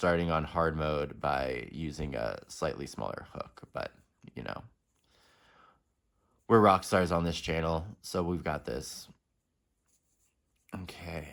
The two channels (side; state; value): both; identical; correlation 1.00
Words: on hard mode by using a slightly smaller hook, but you know, we're rock stars on this channel, so we've got this. Okay,